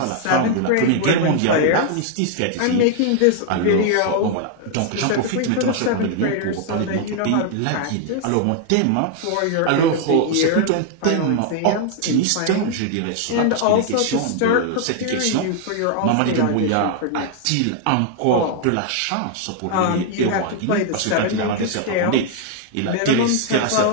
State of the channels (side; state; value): both; different; correlation 0.00